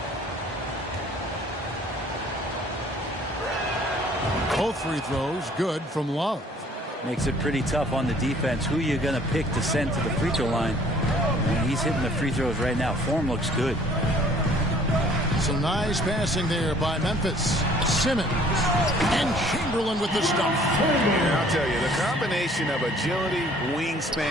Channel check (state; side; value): normal; both; correlation 0.56